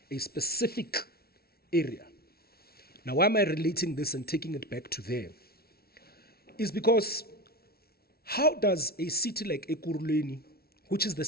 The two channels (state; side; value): late; right; 0.44 ms